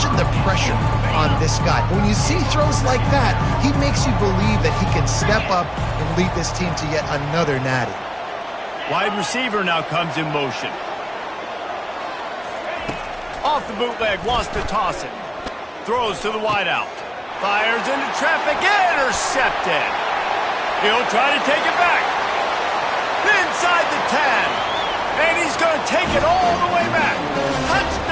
the pressure on this guy. But when you see throws like that, he makes you believe that he can step up and lead this team to yet another natty. Wide receiver now comes in motion. Off the bootleg, wants to toss it. Throws to the wideout. Fires into traffic, intercepted. He'll try to take it back. Inside the 10. And he's going to take it all the way back.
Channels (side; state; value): both; identical; correlation 1.00